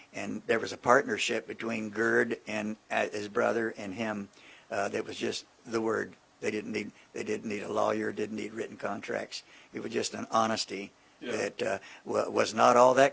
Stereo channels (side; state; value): both; identical; correlation 1.00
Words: and there was a partnership between Gerd and his brother and him that was just the word. They didn't need a lawyer, didn't need written contracts. It was just an honesty that was not all